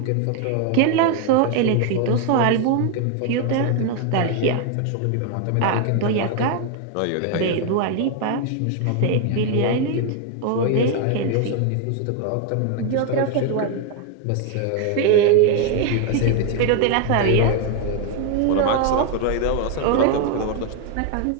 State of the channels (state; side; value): different; both; correlation 0.01